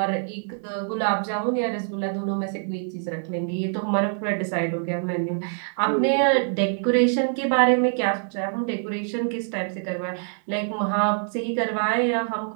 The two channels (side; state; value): left; silent; digital silence